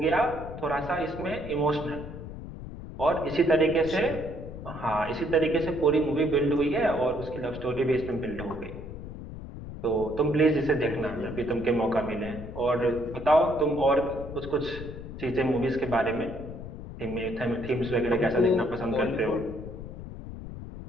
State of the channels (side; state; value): left; noise; rumble, 10 dB below the sound